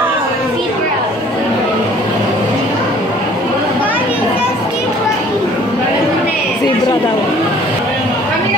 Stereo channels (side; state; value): both; normal; correlation 0.54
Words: Zebra. Zebra daw. Kami